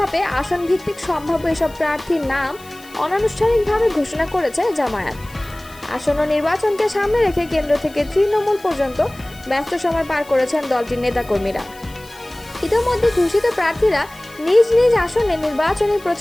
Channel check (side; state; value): left; noise; hiss, 23 dB below the sound